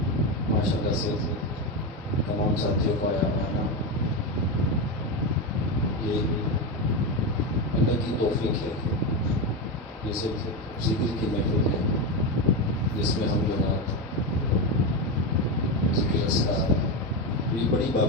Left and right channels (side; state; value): both; normal; correlation 0.14